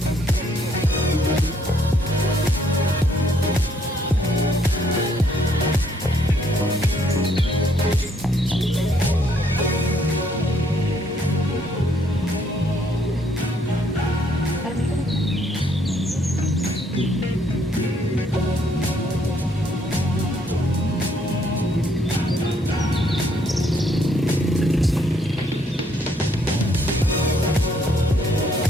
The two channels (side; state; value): both; normal; correlation 0.68